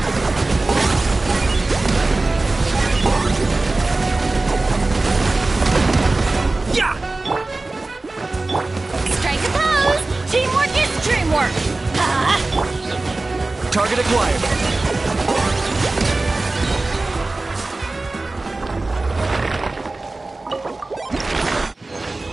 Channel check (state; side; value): quieter; left; 3.2 dB